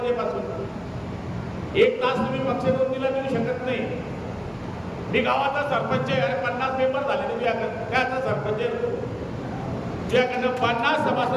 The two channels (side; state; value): both; identical; correlation 1.00